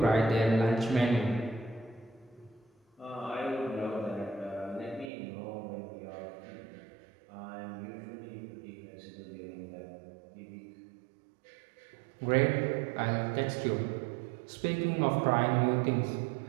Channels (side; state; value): left; drops out; at 5.1 s